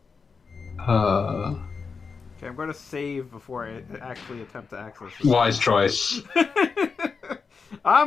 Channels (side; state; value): right; quieter; 5.1 dB